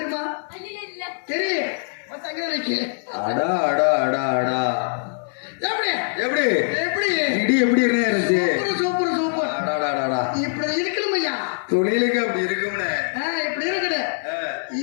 தெரியும். எப்படி எப்படி இருந்துச்சு? Super super. இப்படி இருக்கணும் ஐயா, தொழிலுக்கு அப்படி இருக்கும்னு. இப்படி இருக்குது.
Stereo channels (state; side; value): silent; right; digital silence